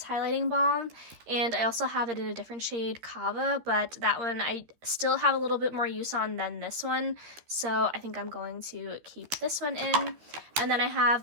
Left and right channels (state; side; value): late; left; 13 ms